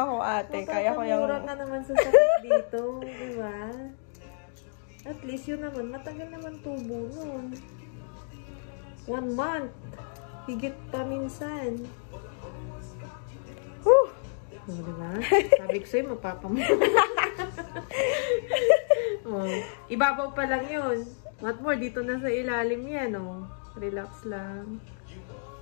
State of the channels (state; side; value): silent; right; digital silence